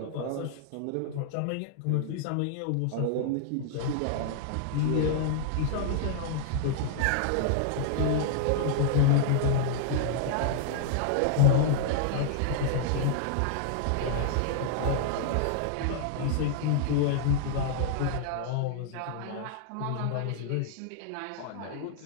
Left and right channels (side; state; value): both; different; correlation -0.01